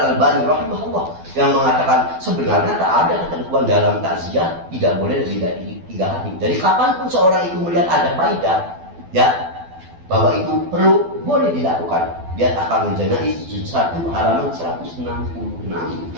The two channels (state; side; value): late; left; 12 ms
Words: rahimahullah yang mengatakan sebenarnya tak ada ketentuan dalam takziah tidak boleh lebih dari 3 hari. Jadi kapanpun seorang itu melihat ada faedah ya bahwa itu perlu, boleh dilakukan. Dia akan menjenai juz 1 halaman 166.